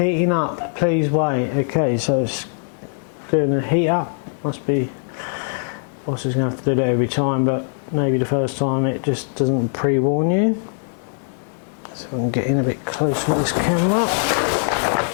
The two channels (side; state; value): right; silent; digital silence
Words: up, please wait. Okay, so it's going to heat up. Must be, boss is going to have to do that every time, but maybe the first time it just doesn't pre-warn you. So I can get in a bit closer with this camera.